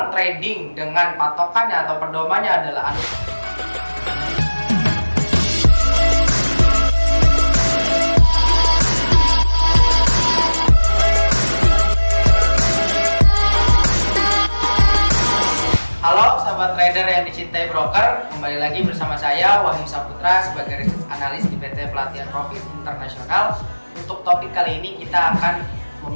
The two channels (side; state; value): both; inverted; correlation -1.00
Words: trading dengan patokannya atau pedomannya adalah Halo sahabat trader yang dicintai broker, kembali lagi bersama saya Wahyu Saputra sebagai research analis di PT Pelatihan Profit Internasional. Untuk topik kali ini kita akan